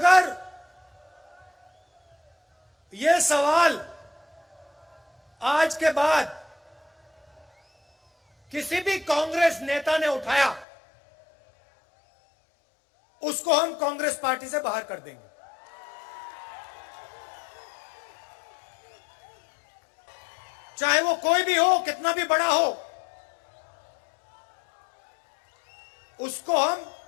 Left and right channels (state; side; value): drops out; right; at 10.7 s